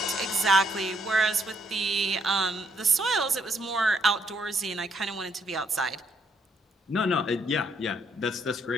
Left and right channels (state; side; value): normal; both; correlation 0.71